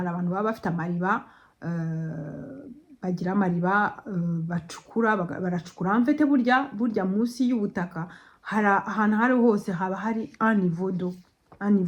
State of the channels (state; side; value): identical; both; correlation 1.00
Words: abantu baba bafite amariba, bagira amariba bacukura, baracukura mfite burya munsi y'ubutaka ahantu hari hose haba hari anivodo